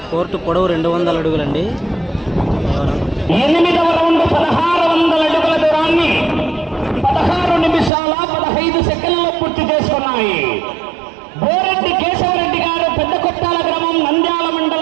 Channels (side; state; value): left; drops out; at 7.9 s